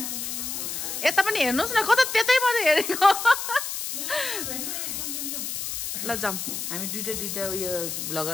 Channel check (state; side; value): noise; left; hiss, 4 dB below the sound